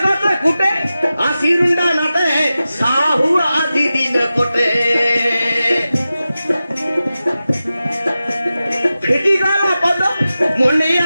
কথা ফুটে আসিরুন্ডা নাটে সাহু আজি দিন কোটে ফিটি গল পদ মুন্ডি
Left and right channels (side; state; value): both; inverted; correlation -0.94